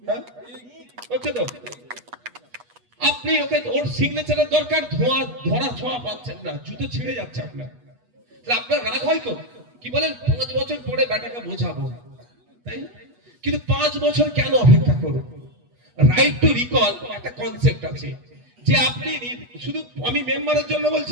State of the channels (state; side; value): late; left; 8.2 ms